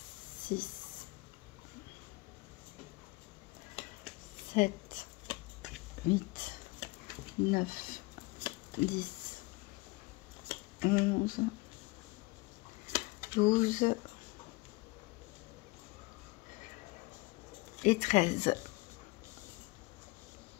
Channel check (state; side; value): quieter; right; 23.9 dB